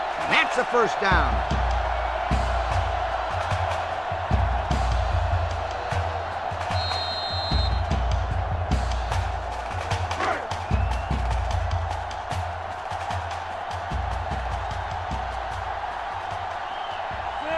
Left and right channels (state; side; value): identical; both; correlation 1.00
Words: That's a first down.